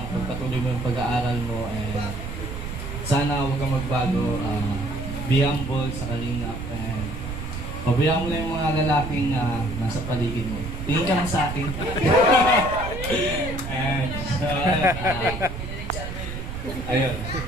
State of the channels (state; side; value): noise; right; rumble, 7 dB below the sound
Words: pagpatuloy mo yung pag-aaral mo, and sana huwag kang magbago. Be humble sa kalingap, and pabayaan mo na yung mga lalaking nasa paligid mo. Tingin ka lang sa akin. And so, ayun.